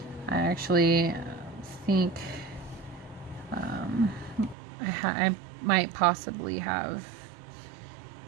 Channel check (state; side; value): drops out; left; at 4.5 s